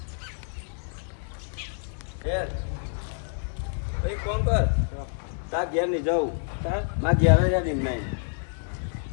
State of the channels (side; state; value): right; silent; 60 dB below the other